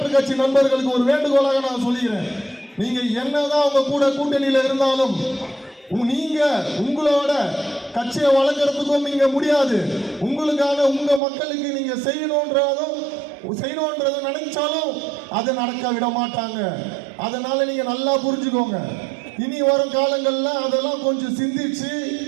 கட்சி நண்பர்களுக்கு ஒரு வேண்டுகோளாக நான் சொல்லிக்கிறேன், நீங்க என்னதான் உங்க கூட கூட்டணியில் இருந்தாலும் நீங்க உங்களோட கட்சியை வளர்க்கறதுக்கும் நீங்க முடியாது. உங்களுக்கான உங்க மக்களுக்கு நீங்க செய்யணும்ன்றத நினைச்சாலும் அதை நடக்க விட மாட்டாங்க. அதனால நீங்க நல்லா புரிஞ்சுக்கோங்க. இனி வரும் காலங்கள்ல அதெல்லாம் கொஞ்சம் சிந்திச்சு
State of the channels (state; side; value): drops out; left; at 11.2 s